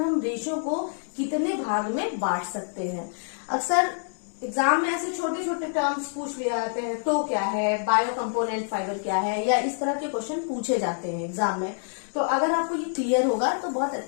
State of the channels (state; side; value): silent; right; digital silence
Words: हम रेशों को कितने भाग में बांट सकते हैं। अक्सर एग्जाम में ऐसे छोटे छोटे टर्म्स पूछ लिए जाते हैं, तो क्या है, बायो कंपोनेंट फाइबर क्या है, या इस तरह के क्वेश्चन पूछे जाते हैं एग्जाम में। तो अगर आपको ये क्लियर होगा तो बहुत